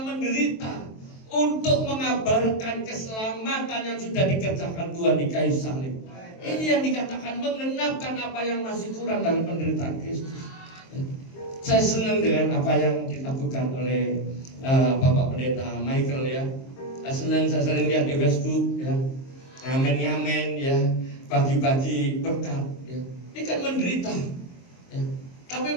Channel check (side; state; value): right; late; 23 ms